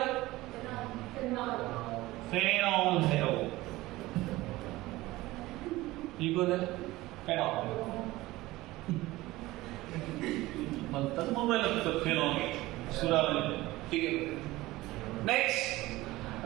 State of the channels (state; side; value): quieter; left; 18.6 dB